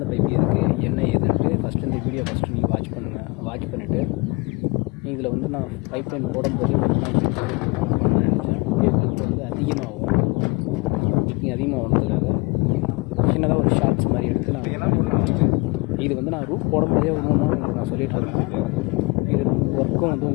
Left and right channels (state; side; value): quieter; right; 27.7 dB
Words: பைப் இருக்குது என்ன ஏதுன்ட்டு ஃபஸ்ட்டு இந்த வீடியோ நீங்கள் வாட்ச் பண்ணுங்கள். வாட்ச் பண்ணிவிட்டு இதில் வந்து நான் பைப் லைன் போடும்போது பண்ணணும்னு நினச்சேன். வீடியோக்கு வந்து அதிகமாகும். நீங்கள் அதிகமாக வந்ததுக்காக சின்னதாக ஒரு ஷார்ட்ஸ் மாதிரி எடுத்து இது வந்து நான் ரூஃப் போடும்போதே உங்களுக்கு நான் சொல்லிகிட்டு இருந்தேன். இது ஒர்க்கும் வந்து